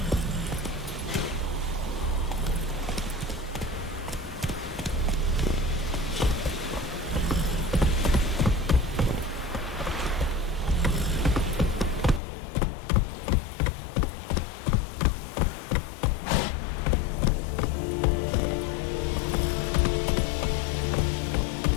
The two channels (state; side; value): drops out; right; at 12.2 s